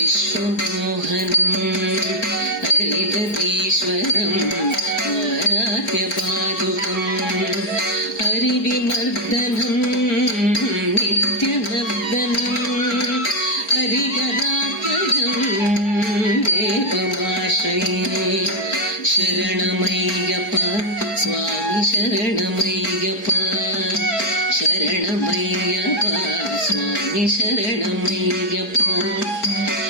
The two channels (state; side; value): late; right; 4.9 ms